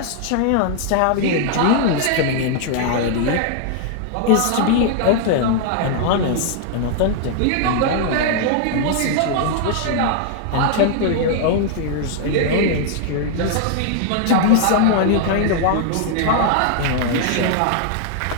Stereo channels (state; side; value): different; both; correlation 0.00